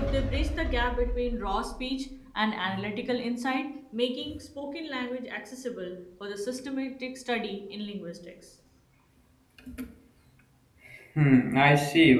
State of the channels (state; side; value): identical; both; correlation 1.00